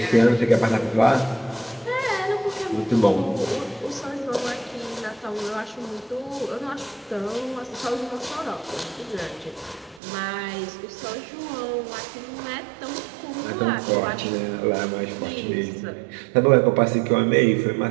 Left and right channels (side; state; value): left; drops out; at 10.0 s